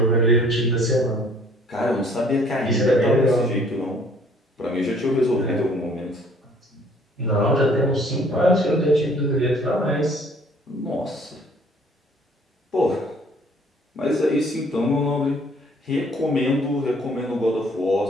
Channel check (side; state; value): both; normal; correlation 0.58